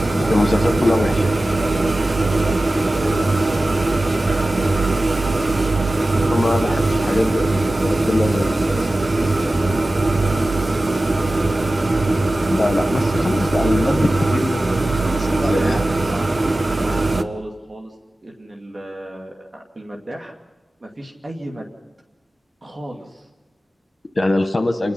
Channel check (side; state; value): both; normal; correlation 0.95